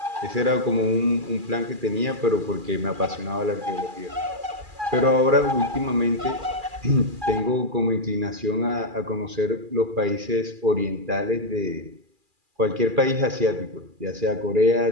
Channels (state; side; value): late; left; 2.4 ms